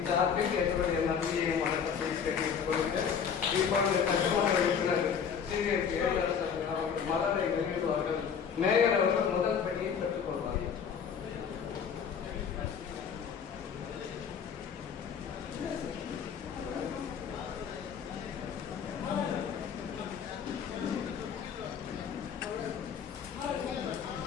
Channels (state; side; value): quieter; right; 7.1 dB